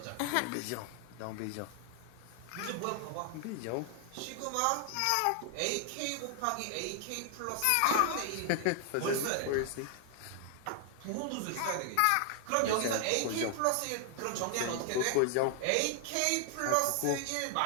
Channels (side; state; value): both; different; correlation 0.00